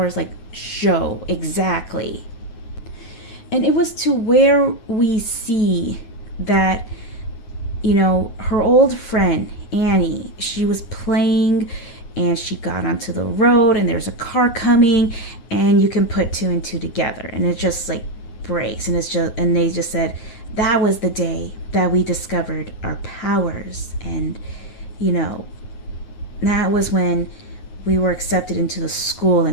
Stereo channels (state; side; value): late; right; 9.4 ms